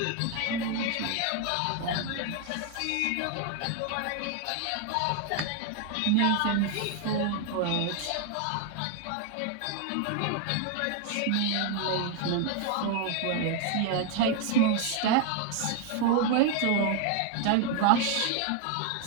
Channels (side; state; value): both; different; correlation 0.01